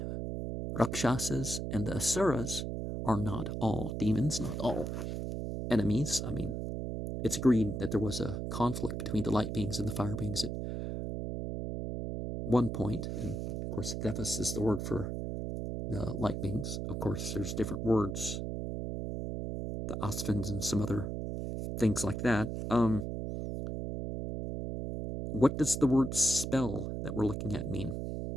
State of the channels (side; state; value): right; noise; hum, 4 dB below the sound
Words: Rakshasas, and the Asuras are not all demons, not all enemies. I mean, it's agreed that there was a conflict between the light beings and the fire beings at one point, and of course, Devas is the word for the light beings. Of course, there's different words, the Asvins and some other things like that. What does the word spell that we're looking at mean?